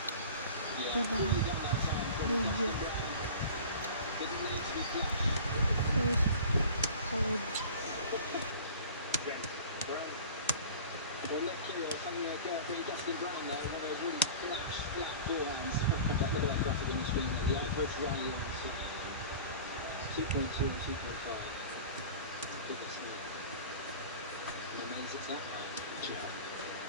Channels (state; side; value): inverted; both; correlation -0.39